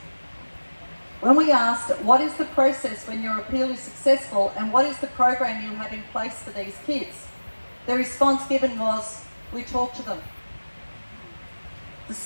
When we asked, what is the process when your appeal is successful and what is the program you have in place for these kids? The response given was, we talk to them. The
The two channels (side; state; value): both; inverted; correlation -1.00